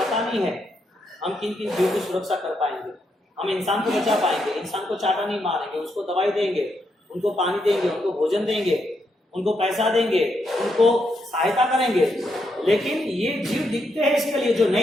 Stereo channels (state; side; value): normal; both; correlation 0.80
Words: नहीं है हम किन किन जीवों की सुरक्षा कर पाएंगे, हम इंसान को बचा पाएंगे, इंसान को चाटा नहीं मारेंगे, उसको दवाई देंगे, उनको पानी देंगे, उनको भोजन देंगे, उनको पैसा देंगे, उनको सहायता करेंगे, लेकिन ये जीव दिखते हैं इसके लिए, जो